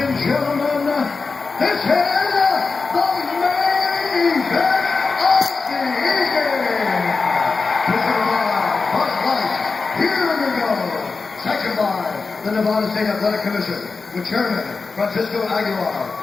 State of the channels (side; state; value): right; quieter; 4.3 dB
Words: gentlemen, this is the main event of the evening. Presented by Bud Light. Here we go. Second by the Nevada State Athletic Commission, with Chairman Francisco Aguilar,